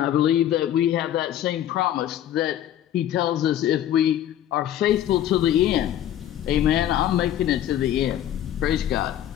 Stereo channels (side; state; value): right; quieter; 11.4 dB